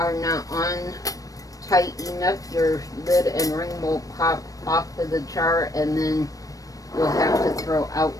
not on tight enough, your lid and ring will pop off of the jar, and then you'll have to throw out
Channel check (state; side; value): late; right; 0.17 ms